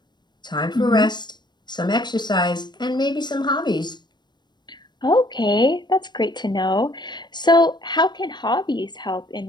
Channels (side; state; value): right; late; 0.21 ms